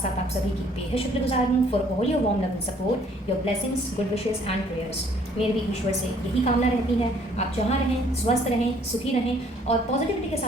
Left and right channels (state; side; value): normal; both; correlation 0.61